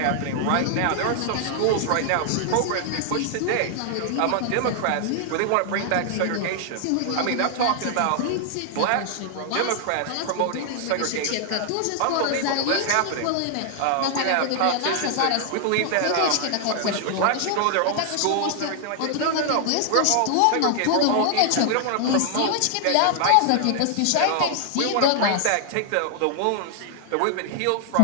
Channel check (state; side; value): different; both; correlation 0.00